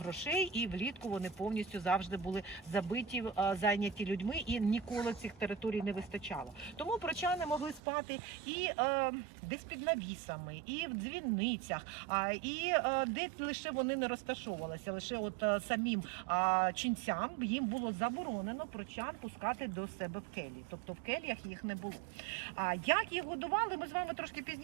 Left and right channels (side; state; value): left; drops out; at 7.8 s